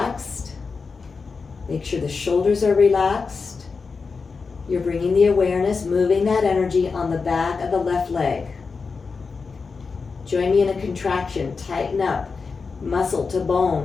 Make sure the shoulders are relaxed. You're bringing the awareness, moving that energy on the back of the left leg. Join me in a contraction. Tighten up. Muscle to bone.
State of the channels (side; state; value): right; quieter; 4.8 dB